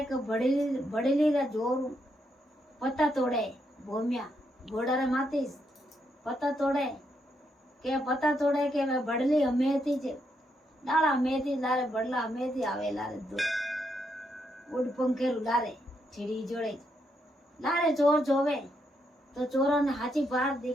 के बड़ेली रा जोर पत्ता तोड़े। भोमिया घोड़ा रे मातीस पत्ता तोड़े के वे बड़ली हमेती जे डाला हमेती लारे बड़ला हमेती आवे लारे दो उड़ पंखेरु लारे छिड़ी जोड़े लारे चोर जोवे तो चोरों ने हाची बार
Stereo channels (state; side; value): normal; both; correlation 0.79